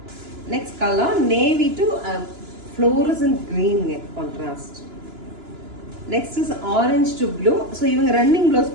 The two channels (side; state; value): left; late; 2.9 ms